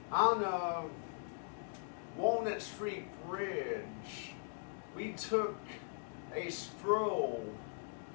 on Walnut Street Bridge. We took a stroll,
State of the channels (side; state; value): right; silent; digital silence